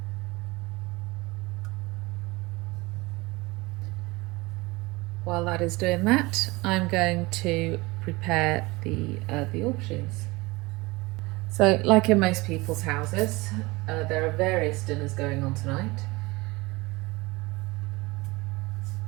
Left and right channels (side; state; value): left; quieter; 23.1 dB